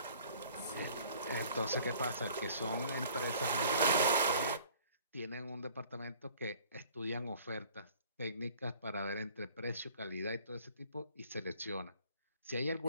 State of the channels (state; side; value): inverted; both; correlation -0.53